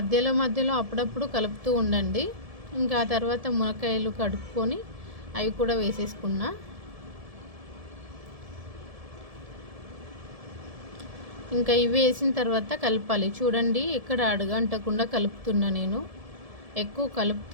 అప్పుడప్పుడు కలుపుతూ ఉండండి. ఇంకా ఆ తర్వాత మునక్కాయలు కడుక్కొని అవి కూడా వేసేసుకున్నా. ఇంకా ఇవి వేసిన తర్వాత కలపాలి. చూడండి, ఎక్కడ అడుగంటకుండా కలుపుతున్నా నేను. ఎక్కువ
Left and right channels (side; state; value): left; late; 1.7 ms